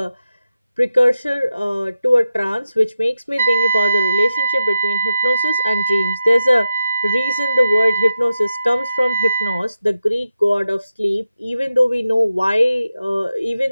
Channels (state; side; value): inverted; both; correlation -0.89